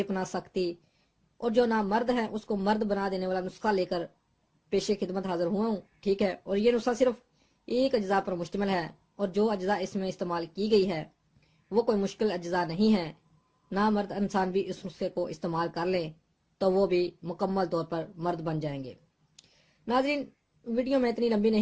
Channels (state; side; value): identical; both; correlation 1.00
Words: پناہ سختی اور جو نامرد ہے اس کو مرد بنا دینے والا نسخہ لے کر پیش خدمت حاضر ہوا ہوں. ٹھیک ہے، اور یہ نسخہ صرف ایک اجزاء پر مشتمل ہے اور جو اجزاء اس میں استعمال کی گئی ہے وہ کوئی مشکل اجزاء نہیں ہے. نامرد انسان بھی اس نسخے کو استعمال کر لیں تو وہ بھی مکمل طور پر مرد بن جائیں گے. ناظرین، ویڈیو میں اتنی لمبی